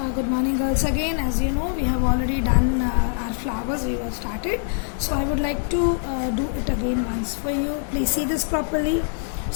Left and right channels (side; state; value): right; silent; digital silence